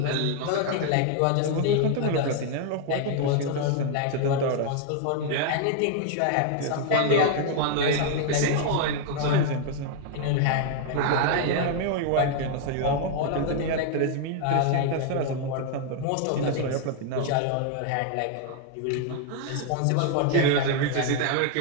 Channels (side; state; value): both; different; correlation 0.00